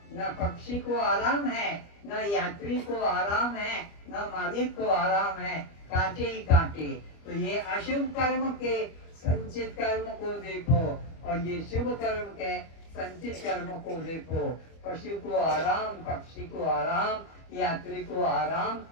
न पक्षी को आराम है, न यात्री को आराम है, न मालिक को आराम है, कांटे ही कांटे। तो ये अशुभ कर्म के संचित कर्म को देखो और ये शुभ कर्म के संचित कर्म को देखो। पशु को आराम, पक्षी को आराम, यात्री को आराम,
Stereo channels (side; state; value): right; late; 25 ms